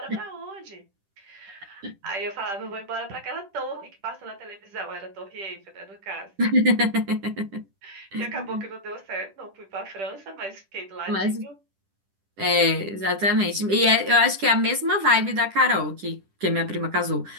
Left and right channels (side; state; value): left; late; 10 ms